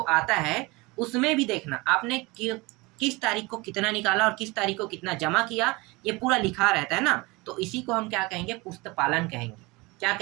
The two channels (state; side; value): quieter; left; 24.1 dB